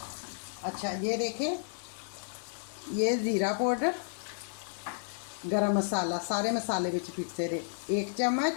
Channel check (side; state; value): right; silent; digital silence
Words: अच्छा, ये देखें, ये ज़ीरा पाउडर, गरम मसाला, सारे मसाले विच पिसे दे। 1